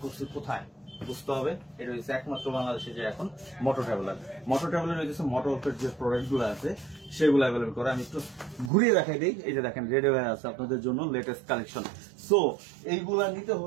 করছে কোথায় বুঝতে হবে। এটা হচ্ছে একমাত্র বাংলাদেশে যে এখন মোটর ট্রাভেলার হচ্ছে মোটরউলফের যে প্রোডাক্ট গুলো আছে সেগুলো অ্যাভেলেবেল করে। আমি একটু ঘুরিয়ে দেখাই দিই। এই যে দেখেন রেডি হয়ে আছে আপনাদের জন্য লেটেস্ট কালেকশন। সো এইগুলা নিতে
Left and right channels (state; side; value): drops out; left; at 8.7 s